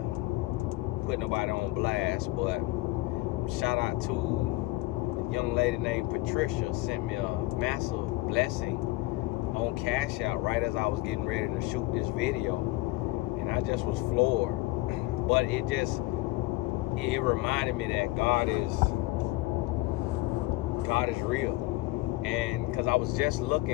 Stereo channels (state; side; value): quieter; right; 19.4 dB